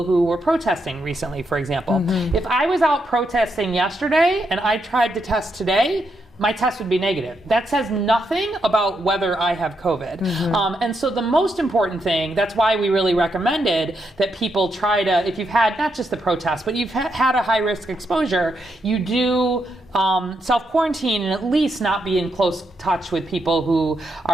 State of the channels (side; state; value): both; normal; correlation 0.81